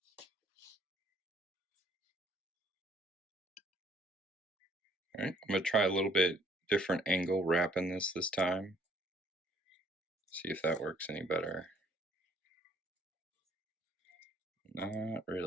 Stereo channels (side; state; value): both; normal; correlation 0.61